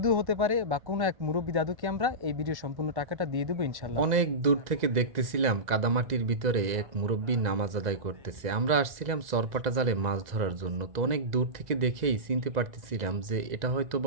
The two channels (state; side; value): late; left; 2.0 ms